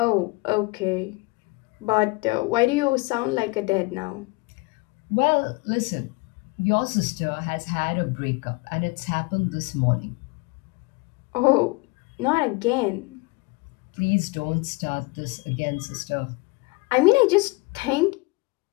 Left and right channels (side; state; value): right; quieter; 25.7 dB